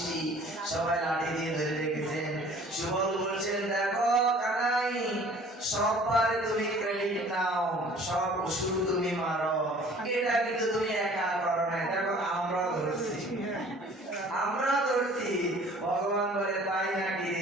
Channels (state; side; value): normal; both; correlation 0.51